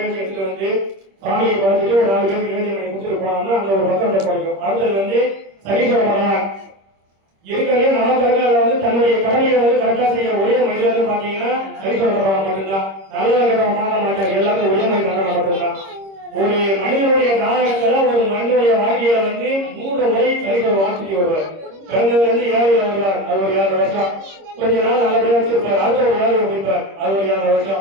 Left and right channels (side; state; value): left; late; 26 ms